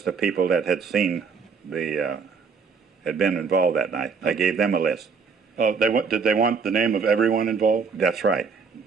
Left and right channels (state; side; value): quieter; left; 5.4 dB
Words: of people that had seen had been involved that night. I gave them a list. Did they want the name of everyone involved? That's right.